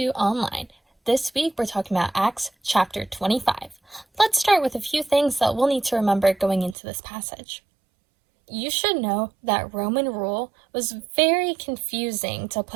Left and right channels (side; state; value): left; drops out; at 6.8 s